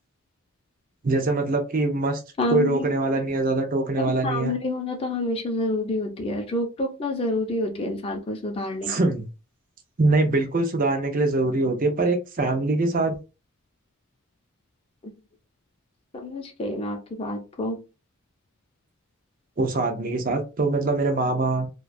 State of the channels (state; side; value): normal; both; correlation 0.39